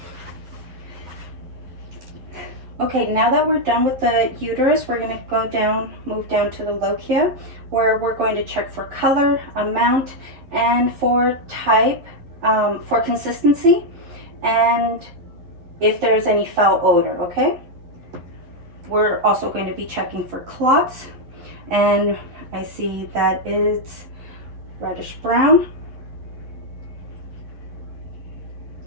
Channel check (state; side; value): late; left; 11 ms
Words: Okay, now that we're done with the uterus, we're gonna go down, move down to the lochia, where we're going to check for color, amount, and for type, for consistency, and if there's any foul odor, okay? We're also going to be checking for clots, and I see that it's reddish brown.